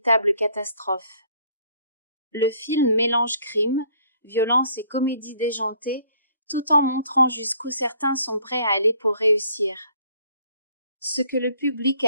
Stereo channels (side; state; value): both; inverted; correlation -0.61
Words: catastrophe. Le film mélange crime, violence et comédie déjantée, tout en montrant jusqu'où certains sont prêts à aller pour réussir. Ce que le public